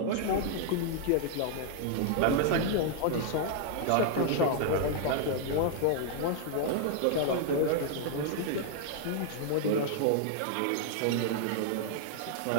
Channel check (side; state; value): both; different; correlation 0.00